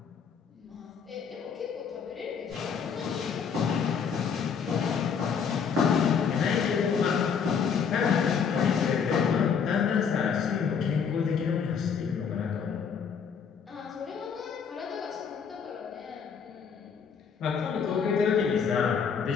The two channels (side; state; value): right; quieter; 6.6 dB